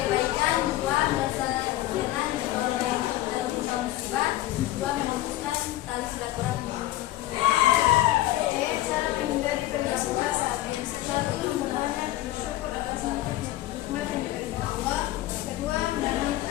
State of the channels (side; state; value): right; quieter; 15.5 dB